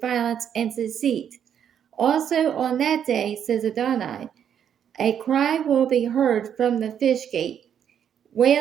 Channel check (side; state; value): left; quieter; 8.8 dB